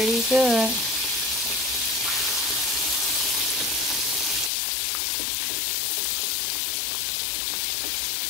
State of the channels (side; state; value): right; drops out; at 4.5 s